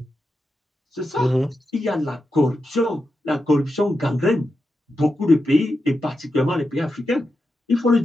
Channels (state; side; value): normal; both; correlation 0.88